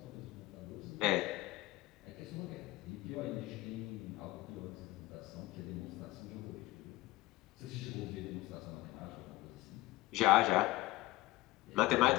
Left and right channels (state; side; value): quieter; right; 18.3 dB